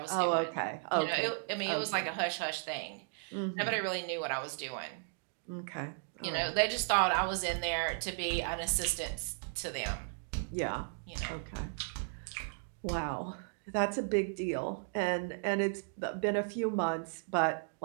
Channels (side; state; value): left; silent; digital silence